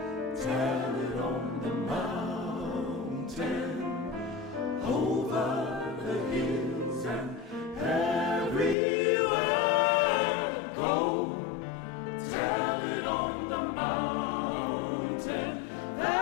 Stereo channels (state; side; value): drops out; right; at 8.8 s